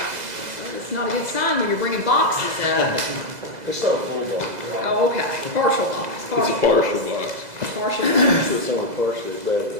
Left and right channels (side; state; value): left; late; 2.0 ms